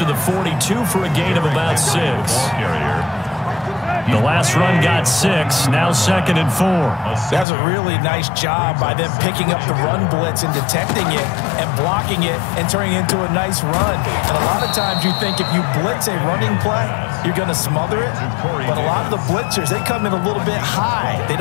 the 42 for a gain of about 6. The last run got 6, now 2nd and 4. That's a really nice job by them picking up the run blitz and detecting it and blocking it and turning it into a nice run. And a lot of times you think if you blitz a running play, you're going to smother it. But a lot of the blitzers, they come in a little bit high. They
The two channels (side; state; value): right; drops out; at 7.5 s